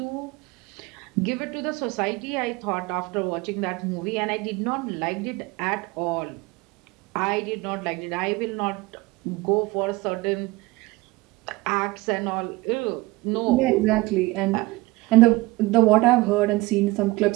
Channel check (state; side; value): quieter; left; 21.0 dB